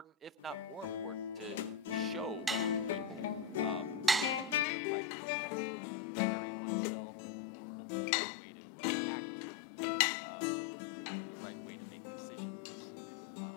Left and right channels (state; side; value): drops out; right; at 4.7 s